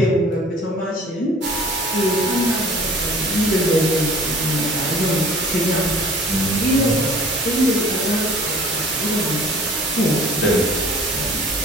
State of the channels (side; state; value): both; normal; correlation 0.48